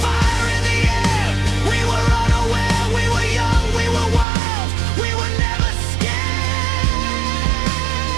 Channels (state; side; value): drops out; left; at 4.2 s